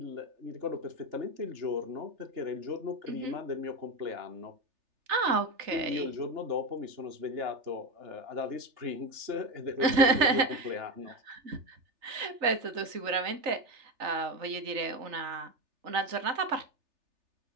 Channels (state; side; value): late; left; 3.3 ms